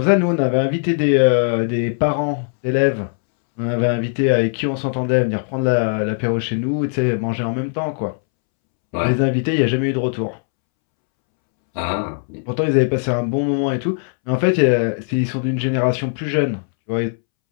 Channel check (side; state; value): right; silent; 66 dB below the other